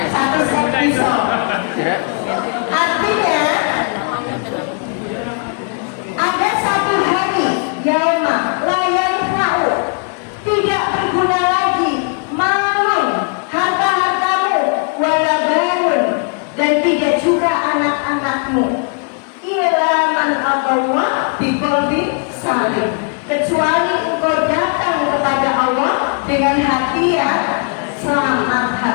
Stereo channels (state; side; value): quieter; right; 39.3 dB